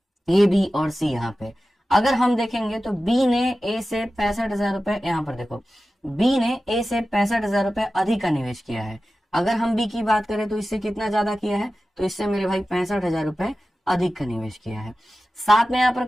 ए, बी और सी। यहाँ पे अगर हम देखेंगे तो बी ने ए से 65,000 रुपए, यहाँ पर देखो बी ने ए से 65,000 रुपए अधिक का निवेश किया है। अगर हम बी की बात करें तो इससे कितना ज्यादा किया है, तो इससे मेरे भाई 65,000 रुपए अधिक का निवेश किया है। साथ में यहाँ पर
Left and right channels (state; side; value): normal; both; correlation 0.94